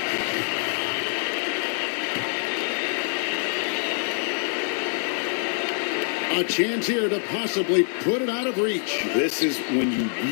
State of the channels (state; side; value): silent; right; 62 dB below the other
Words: A chance here to possibly put it out of reach. This is when you